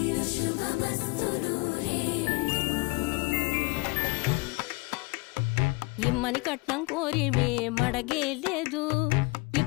శుభమస్తు నూరేళ్ళు. ఇమ్మని కట్నం కోరి మడగేలేదు,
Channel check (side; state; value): right; quieter; 26.0 dB